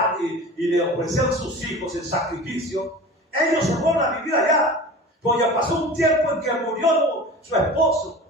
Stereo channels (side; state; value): both; normal; correlation 0.36